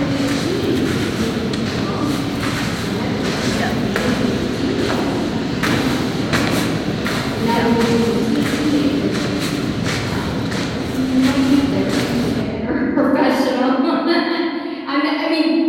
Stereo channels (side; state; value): both; identical; correlation 1.00